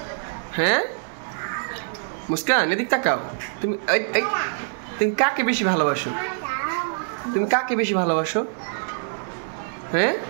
হ্যাঁ মুস্কান এদিক তাকাও তুমি তুমি কাকে বেশি ভালোবাসো তুমি কাকে বেশি ভালোবাসো হ্যাঁ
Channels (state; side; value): silent; left; digital silence